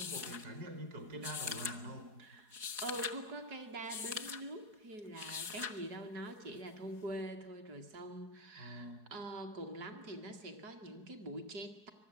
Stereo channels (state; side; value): late; left; 4.8 ms